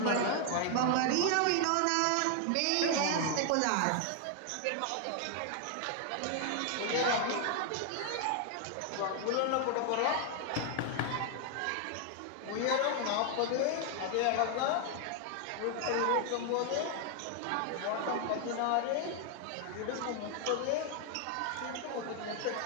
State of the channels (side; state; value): both; different; correlation 0.00